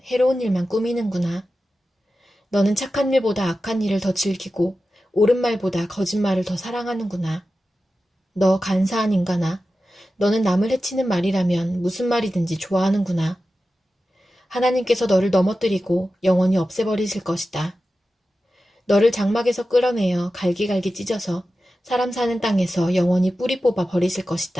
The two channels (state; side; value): normal; both; correlation 0.93